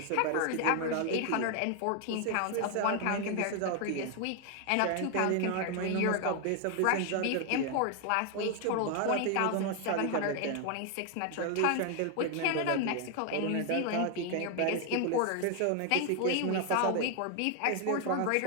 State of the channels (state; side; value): different; both; correlation 0.01